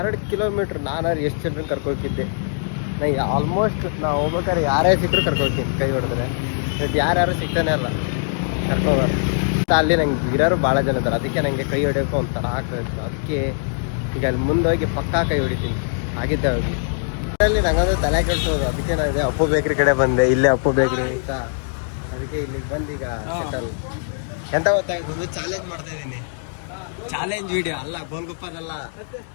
ಕಿಲೋಮೀಟ್ರ್ ನಾನಾರು ಎಷ್ಟು ಜನರನ್ನ ಕರ್ಕೋಗಿದ್ದೆ. ನನಗೆ ಆಲ್ಮೋಸ್ಟ್ ನಾವು ಹೋಗ್ಬೇಕಾದ್ರೆ ಯಾರೇ ಸಿಕ್ಕರು ಕರ್ಕೋಗ್ತೀನಿ ಕೈ ಹೊಡೆದ್ರೆ. ಬಟ್ ಯಾರ್ಯಾರು ಸಿಗ್ತಾನೆ ಇಲ್ಲ ಕರ್ಕೋಬಾರ್ದು. ಅಲ್ಲಿ ನಂಗೆ ಇರೋರು ಭಾಳ ಜನ ಇದ್ದಾರೆ, ಅದಕ್ಕೆ ನನಗೆ ಕೈ ಹೊಡಿಯೋಕೆ ಒಂಥರ ಆಗ್ತಾಯಿತ್ತು. ಅದಕ್ಕೆ ಈಗ ಅಲ್ಲಿ ಮುಂದೆ ಹೋಗಿ ಪಕ್ಕಾ ಕೈ ಹೊಡಿತೀನಿ ಆಗಿದ್ದೆ ಹೋಗಿ. ಅಲ್ಲಿ ನಂಗಂದ್ರೆ ತಲೆ ಕೆಡ್ಸೋದು. ಅದಕ್ಕೆ ನಾನು ಇದೆ ಅಪ್ಪು ಬೇಕ್ರಿ ಕಡೆ ಬಂದೆ. ಇಲ್ಲೇ ಅಪ್ಪು ಬೇಕ್ರಿ ಅಂತ, ಅದಕ್ಕೆ ಇಲ್ಲಿಗೆ ಬಂದು ಈಗ ಸೆಟಲ್. ಎಂತ ಗೊತ್ತಾಯ್ತು, ಚಾಲೆಂಜ್ ಮಾಡ್ತಾ ಇದ್ದೀನಿ. ಚಾಲೆಂಜ್ ವಿಡಿಯೋ ಅಲ್ಲ, ಗೋಲ್ಗುಪ್ಪದಲ್ಲ.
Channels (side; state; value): right; silent; digital silence